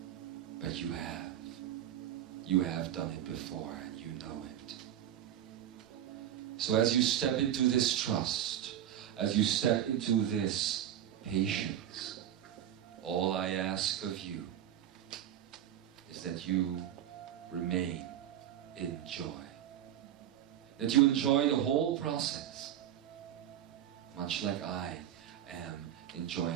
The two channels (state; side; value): quieter; left; 11.1 dB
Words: But you have. You have done it before and you know it. So as you step into this trust, as you step into this patience, all I ask of you is that you remain in joy. That you enjoy the whole process, much like I am